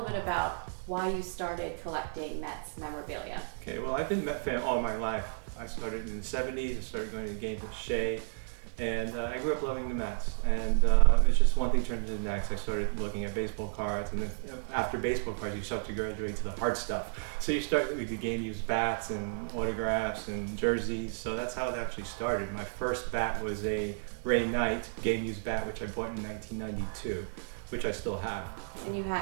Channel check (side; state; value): left; silent; digital silence